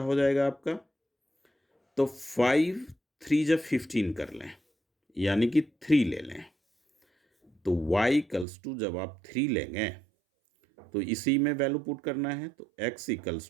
जाएगा आपका, तो 5 3 जब 15 कर लें यानी कि 3 ले लें। तो y इक्वल्स टू जब आप 3 लेंगे तो इसी में वैल्यू पुट करना है। तो x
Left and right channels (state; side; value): drops out; left; at 8.5 s